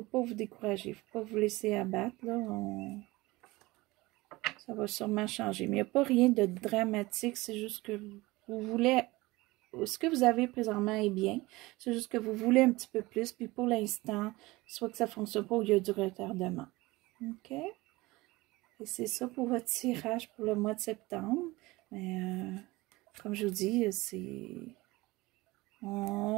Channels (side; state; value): left; quieter; 20.8 dB